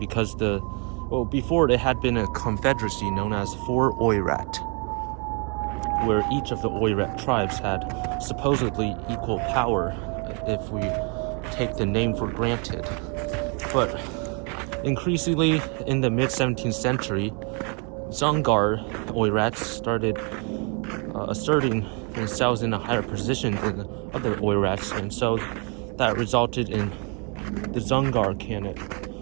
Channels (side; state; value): left; quieter; 35.7 dB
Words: before it had been a confederacy known as Four Oirat, where each of the Oirat tribes had supposedly equal power, if we take the name for granted. But increasingly in the mid-17th century, Dzungar Oirats started asserting themselves in a higher position than other Oirats, and so that resulted in the Dzungar Khanate